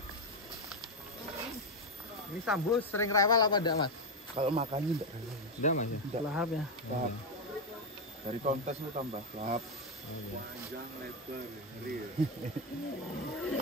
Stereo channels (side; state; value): both; normal; correlation 0.06